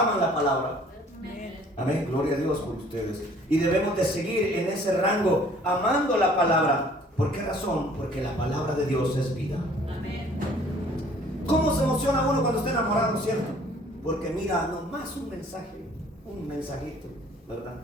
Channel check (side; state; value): both; normal; correlation 0.55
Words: la palabra? Amén. Amén, gloria a Dios por ustedes. Y debemos de seguir en ese rango, amando la palabra. ¿Por qué razón? Porque la palabra de Dios es vida. Amén. ¿Cómo se emociona uno cuando está enamorado, cierto? Porque mira, nomás un mensaje, un mensajito, ¿verdad?